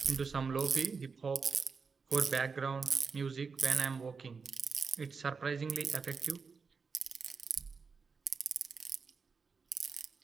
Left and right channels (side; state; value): left; quieter; 5.2 dB